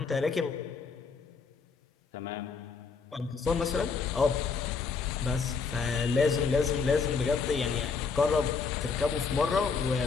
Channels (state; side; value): quieter; right; 5.1 dB